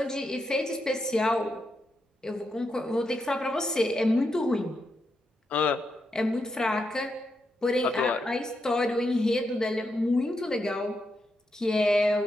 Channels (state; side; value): normal; both; correlation 0.83